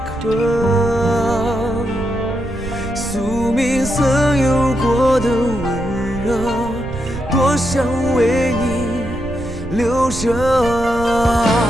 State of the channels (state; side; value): noise; right; rumble, 10 dB below the sound